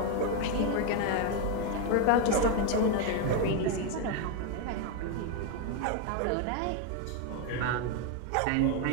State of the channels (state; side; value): different; both; correlation 0.01